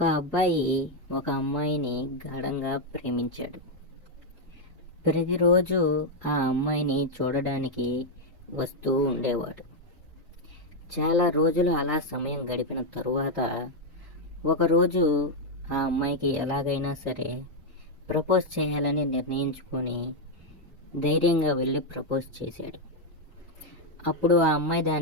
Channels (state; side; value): normal; both; correlation 0.01